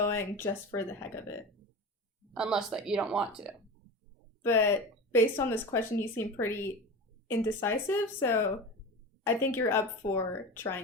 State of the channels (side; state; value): both; normal; correlation 0.29